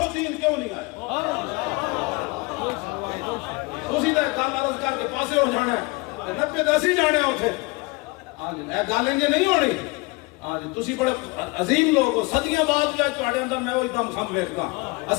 دین کیوں نہیں آیا تسی تے گل عرض کر کے پاسے ہو جانا ہے 90 دسی جانے اوتھے ہاں جی اے گل انج نہیں ہونی ہاں جی تسی بڑے عظیم لوگ ہو صدیاں بعد بھی تواڈے اندر میں وہی دم خم ویکھدا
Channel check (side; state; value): right; quieter; 26.0 dB